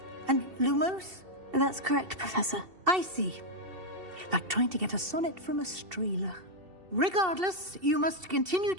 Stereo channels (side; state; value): left; late; 2.7 ms